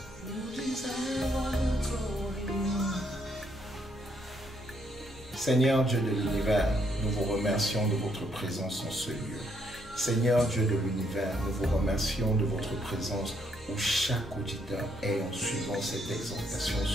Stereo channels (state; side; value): normal; both; correlation 0.73